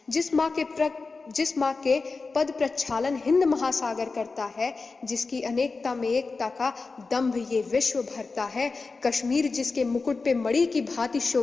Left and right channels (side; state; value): right; quieter; 4.1 dB